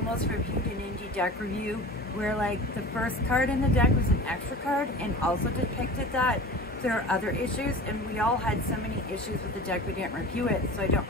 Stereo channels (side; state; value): both; normal; correlation 0.36